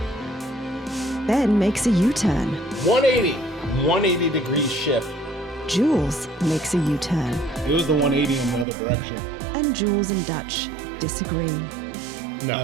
Ben makes a U-turn. 180 degree shift. Jules makes a U-turn. It was the 180 in the other direction. And Jules and Dutch disagree. No,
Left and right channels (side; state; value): left; drops out; at 8.7 s